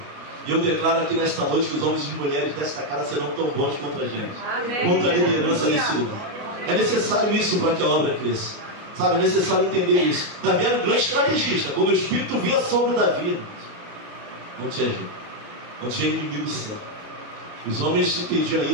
E eu declaro aqui nesta noite que os homens e mulheres desta casa serão tão bons quanto a gente. Amém. Quanto a liderança desse lugar. É necessário isso para que a obra cresça. Sabe, é necessário entender isso. Davi era um grande estrategista. Quando o Espírito vinha sobre Davi, não tinha jeito, não tinha inimigo certo. Os homens entendiam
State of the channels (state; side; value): late; left; 29 ms